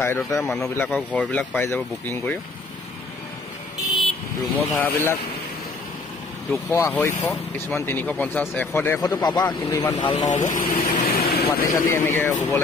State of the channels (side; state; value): right; quieter; 3.5 dB